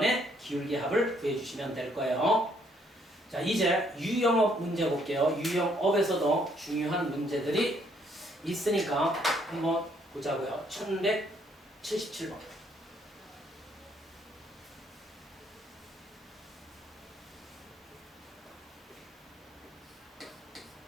기울기 합을 구해 주시면 될 거예요. 자, 이제 유형업 문제 볼게요. 유형업에서도 중요한 문제들이 있으니까 한번 보자고요. 1177번.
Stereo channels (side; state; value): both; normal; correlation 0.68